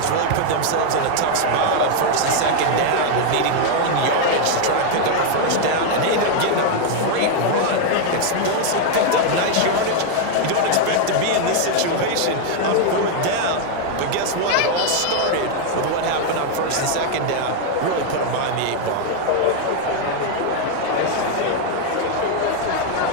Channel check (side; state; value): both; different; correlation 0.00